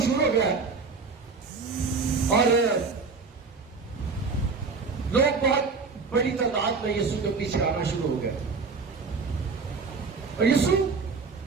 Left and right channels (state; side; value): quieter; left; 4.7 dB